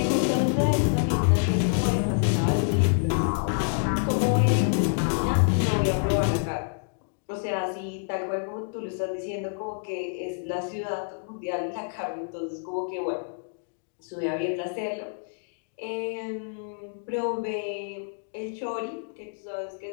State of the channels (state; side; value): silent; right; digital silence